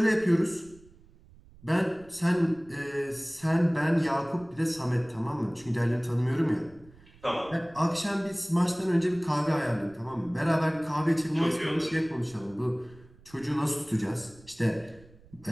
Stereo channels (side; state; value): right; noise; rumble, 25 dB below the sound